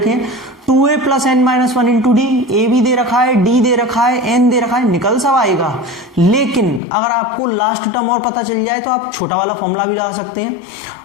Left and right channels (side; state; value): right; drops out; at 6.8 s